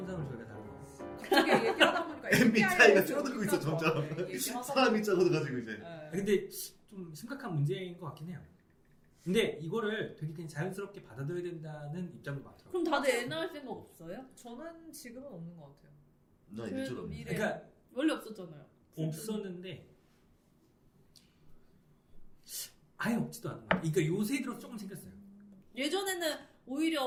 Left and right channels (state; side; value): identical; both; correlation 1.00